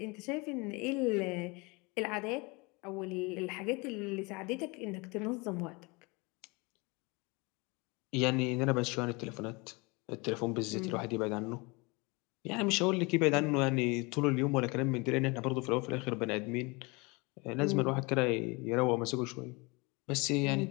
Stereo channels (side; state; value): right; quieter; 27.1 dB